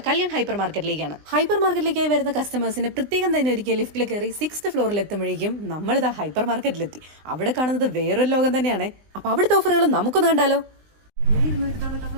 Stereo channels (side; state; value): left; late; 20 ms